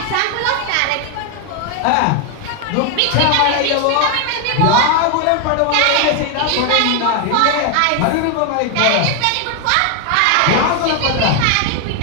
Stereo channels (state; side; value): different; both; correlation 0.01